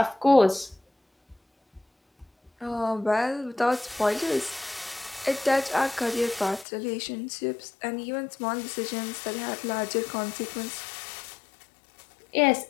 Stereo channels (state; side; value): drops out; right; at 6.7 s